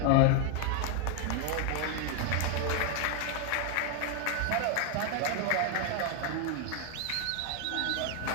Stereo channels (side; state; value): both; different; correlation 0.01